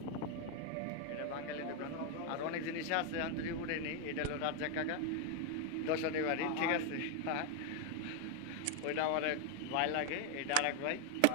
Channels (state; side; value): different; both; correlation 0.01